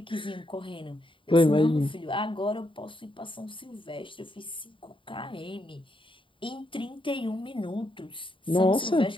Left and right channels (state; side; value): late; right; 0.25 ms